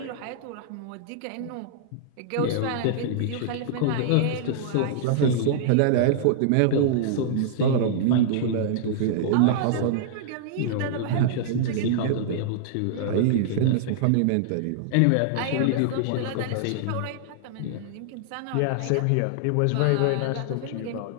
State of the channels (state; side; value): different; both; correlation -0.01